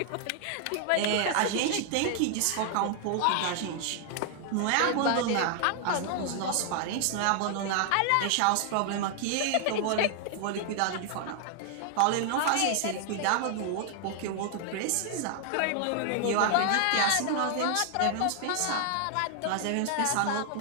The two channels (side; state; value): both; different; correlation 0.00